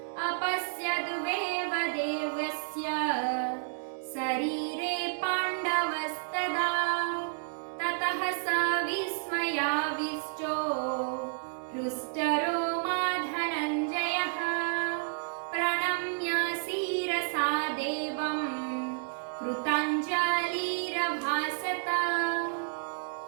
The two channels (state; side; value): silent; left; digital silence